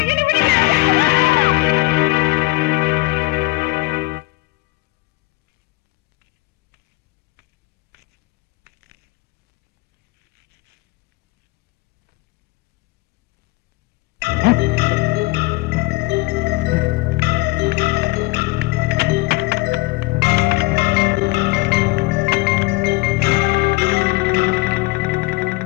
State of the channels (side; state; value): right; quieter; 22.1 dB